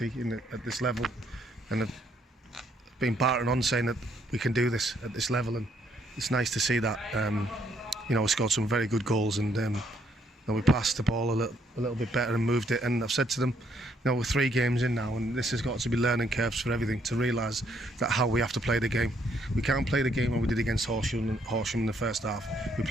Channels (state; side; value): normal; both; correlation 0.70